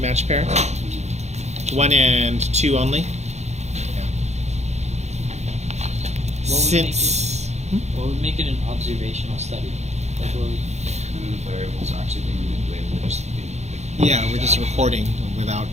pair? 1 and 2 only? Yeah. What would make it an observational study? Like what would- actually being manipulated. We're just Yeah, we're just recording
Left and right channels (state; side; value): late; left; 0.32 ms